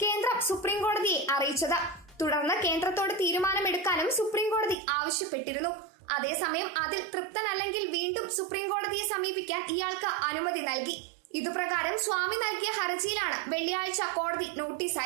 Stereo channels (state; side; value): drops out; left; at 4.8 s